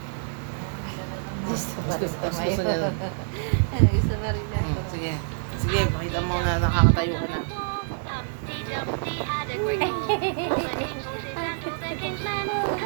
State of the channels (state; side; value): silent; left; digital silence